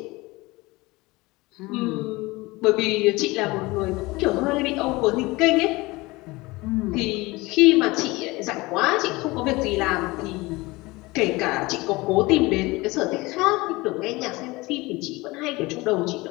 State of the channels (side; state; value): right; quieter; 22.2 dB